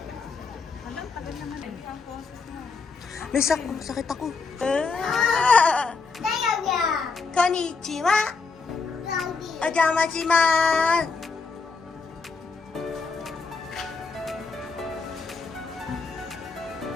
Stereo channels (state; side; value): quieter; right; 4.5 dB